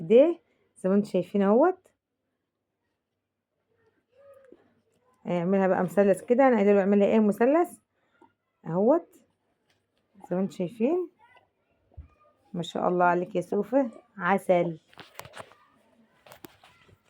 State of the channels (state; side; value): identical; both; correlation 1.00